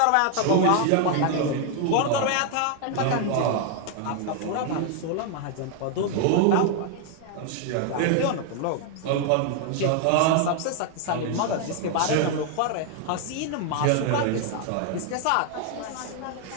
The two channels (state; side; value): different; both; correlation 0.00